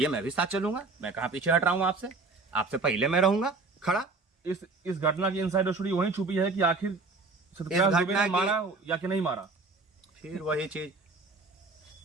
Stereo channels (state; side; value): quieter; left; 3.7 dB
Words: मैं भी साथ चलूंगा। मैं कहाँ पीछे हट रहा हूँ आपसे, आपसे पहले मैं रहूंगा खड़ा। इस घटना की इनसाइडर स्टोरी वहीं छुपी है कि आखिर सत्यपाल दुबे ने मारा या कि नहीं मारा। फिर वही चीज,